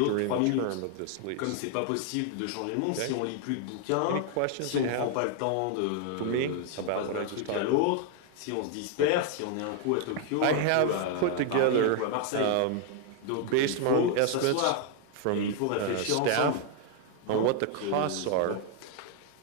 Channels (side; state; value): both; different; correlation 0.00